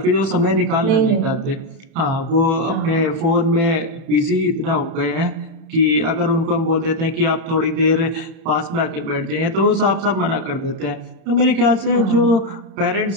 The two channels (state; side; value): late; left; 31 ms